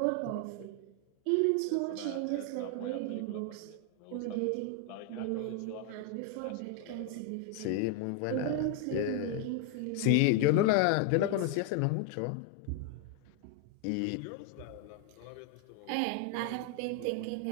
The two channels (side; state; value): both; different; correlation 0.00